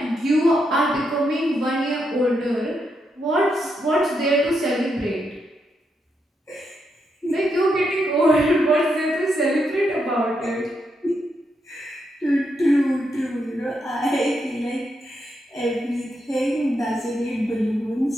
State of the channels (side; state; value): both; normal; correlation 0.81